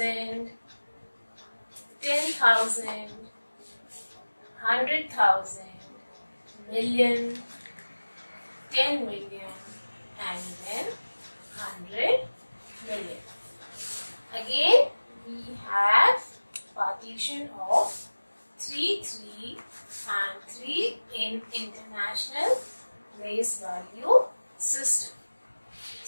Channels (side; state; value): both; inverted; correlation -1.00